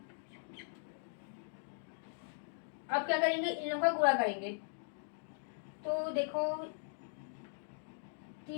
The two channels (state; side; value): silent; right; digital silence